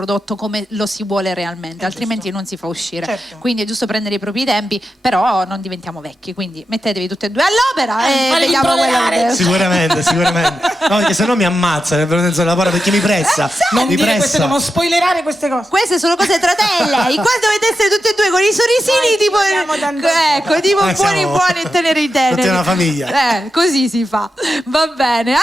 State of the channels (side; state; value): both; normal; correlation 0.89